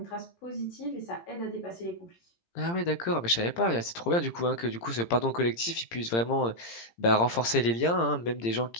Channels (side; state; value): right; late; 17 ms